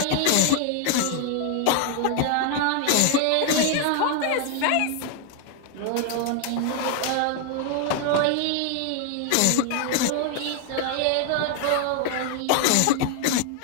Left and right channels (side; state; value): both; different; correlation 0.00